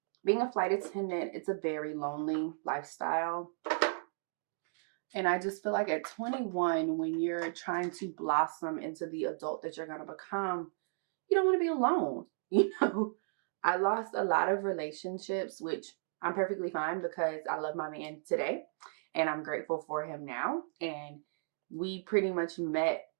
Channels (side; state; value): left; silent; digital silence